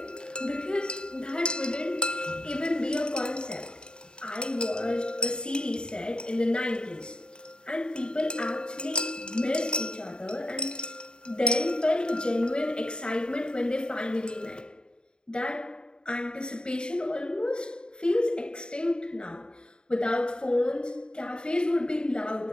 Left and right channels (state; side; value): late; right; 0.049 ms